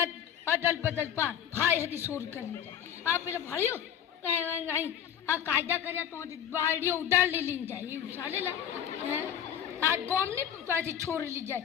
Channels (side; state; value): right; quieter; 9.5 dB